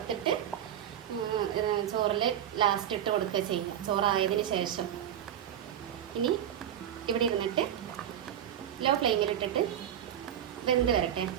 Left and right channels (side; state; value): left; quieter; 10.3 dB